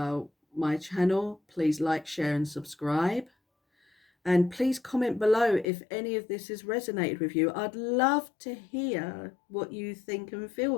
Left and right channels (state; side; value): drops out; right; at 5.7 s